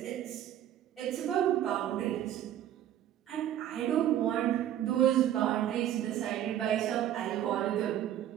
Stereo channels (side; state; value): left; quieter; 11.5 dB